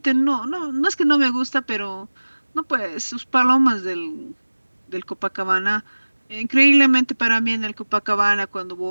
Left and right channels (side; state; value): both; inverted; correlation -1.00